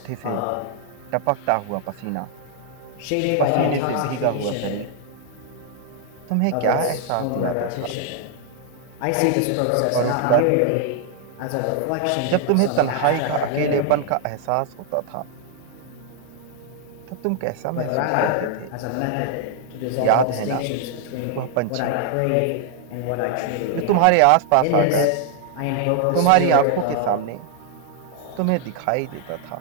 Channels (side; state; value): both; different; correlation 0.00